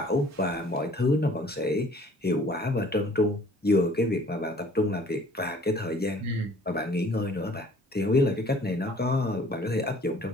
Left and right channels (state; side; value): normal; both; correlation 0.54